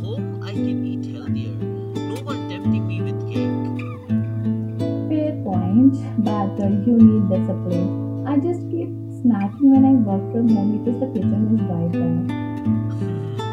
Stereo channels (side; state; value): both; identical; correlation 1.00